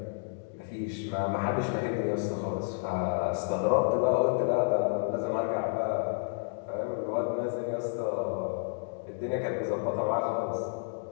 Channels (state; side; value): silent; right; digital silence